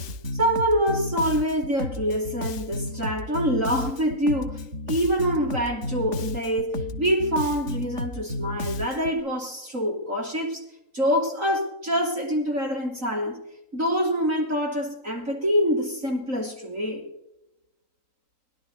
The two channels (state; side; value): late; left; 3.9 ms